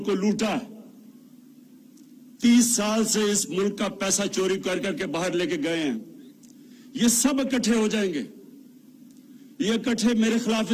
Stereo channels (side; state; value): both; identical; correlation 1.00